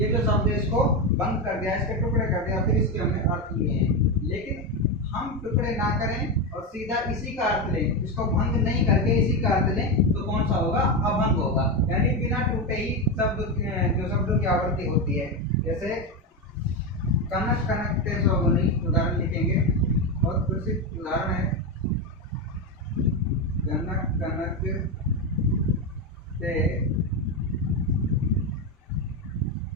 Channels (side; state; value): both; normal; correlation 0.12